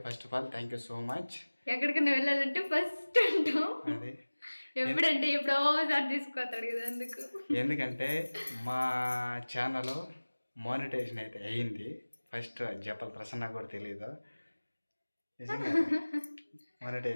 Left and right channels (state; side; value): inverted; both; correlation -1.00